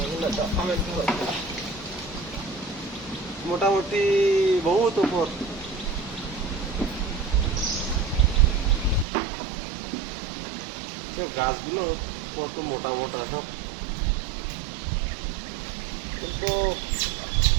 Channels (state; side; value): drops out; left; at 9.1 s